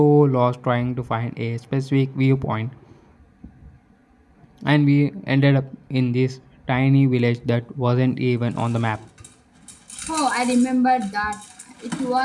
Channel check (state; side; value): identical; both; correlation 1.00